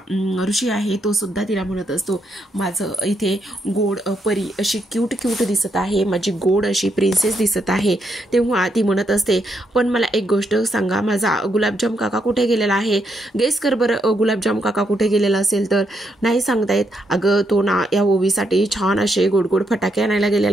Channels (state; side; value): normal; both; correlation 0.78